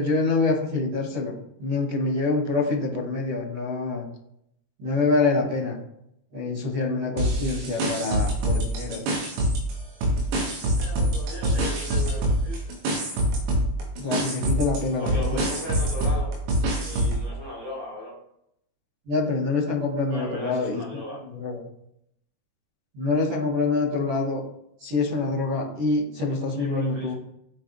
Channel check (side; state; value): left; late; 21 ms